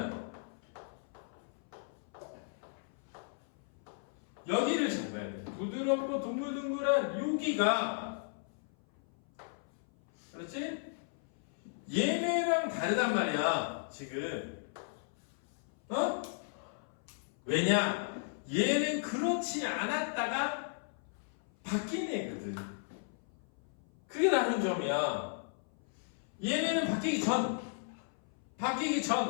여기를 잘 봐야 돼. 부드럽고 동글동글한 여기가, 그렇지? 얘네랑 얘랑 다르단 말이야 지금. 어? 왜냐? 얘는 그렇지 않았다가 바뀐 애거든. 그게 다른 점이야. 얘네는 바뀌기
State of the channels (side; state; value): right; silent; 54 dB below the other